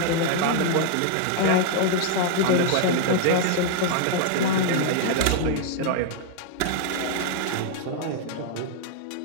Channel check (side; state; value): both; different; correlation 0.00